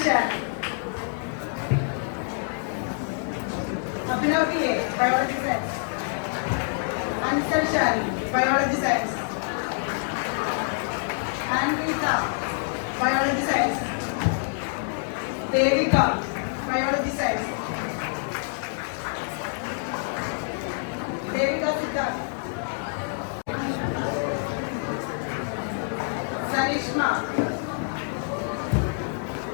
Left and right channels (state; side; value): silent; right; 60 dB below the other